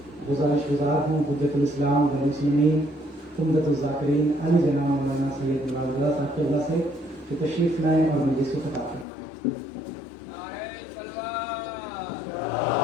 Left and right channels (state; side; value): drops out; right; at 9.1 s